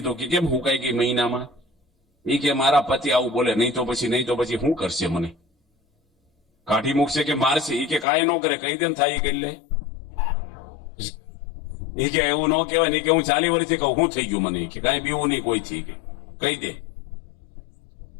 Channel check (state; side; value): drops out; right; at 8.1 s